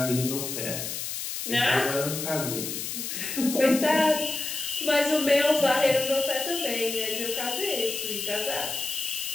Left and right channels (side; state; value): left; noise; hiss, 5 dB below the sound